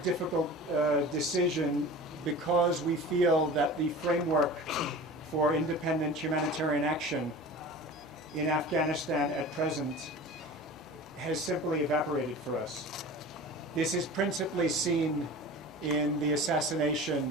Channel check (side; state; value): both; normal; correlation 0.37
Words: decision because we feel that the framework for independent humanitarian action in Afghanistan at present has simply evaporated for us. This is principally seen in the